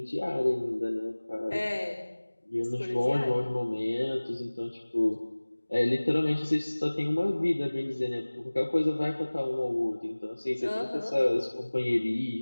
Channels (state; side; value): inverted; both; correlation -1.00